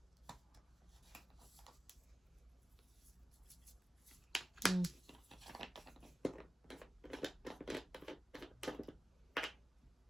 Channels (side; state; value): both; normal; correlation 0.95